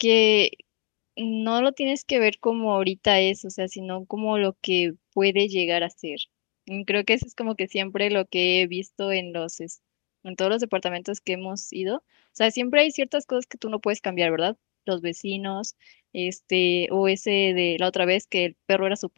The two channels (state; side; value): quieter; right; 34.0 dB